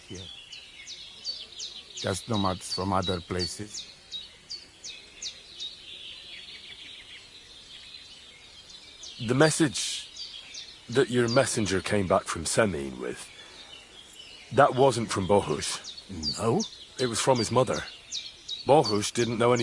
here. Just nomads from other places. The message that your messenger came back from Semin with, that wasn't from Bohush. No? It was from his mother. Bohush didn't know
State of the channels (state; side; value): identical; both; correlation 1.00